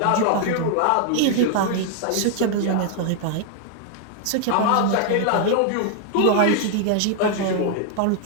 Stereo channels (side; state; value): both; different; correlation 0.00